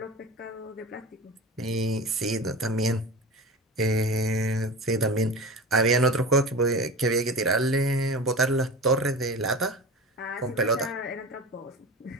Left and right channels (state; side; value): normal; both; correlation 0.31